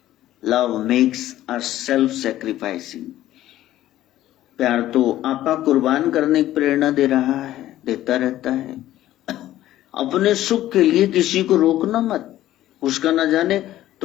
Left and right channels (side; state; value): right; quieter; 13.9 dB